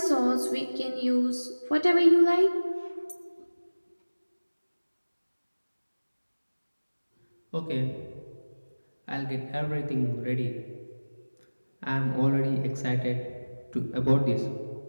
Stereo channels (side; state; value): both; inverted; correlation -1.00